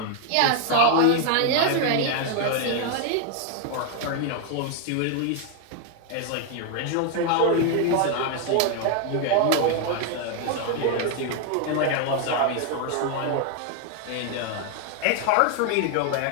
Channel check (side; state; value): both; different; correlation 0.01